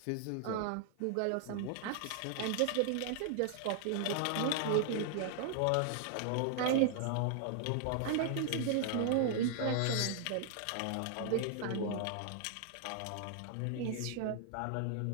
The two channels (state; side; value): different; both; correlation -0.01